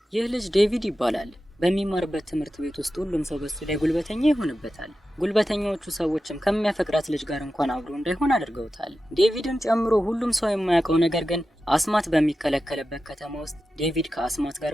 ይህ ልጅ ዴቪድ ይባላል። በሚማርበት ትምህርት ቤት ውስጥ ሁሉም ሰው በሱ ላይ ጉልበተኛ ይሆንበታል። ጉልበተኛዎቹ ሰዎችም ከሚያፈቅራት ልጅ ጋር እንኳን አብሮ እንዳይሆን አድርገውታል። ዴቪድን ጨምሮ ሁሉም ሰው የማያውቀው ነገር ግን አስማት በሚከለከልበት ከተማ ውስጥ ዴቪድ ከአስማት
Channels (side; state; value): both; normal; correlation 0.93